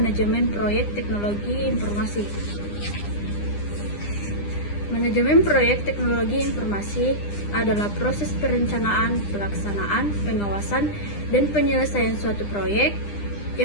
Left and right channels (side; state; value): right; late; 9.9 ms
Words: Proyek Teknologi Informasi. Manajemen proyek teknologi informasi adalah proses perencanaan, pelaksanaan, pengawasan, dan penyelesaian suatu proyek